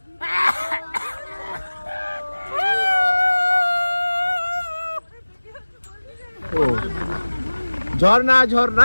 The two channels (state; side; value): inverted; both; correlation -1.00